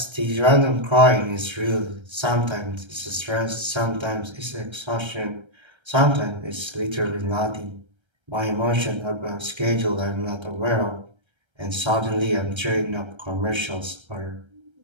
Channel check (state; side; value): late; left; 1.3 ms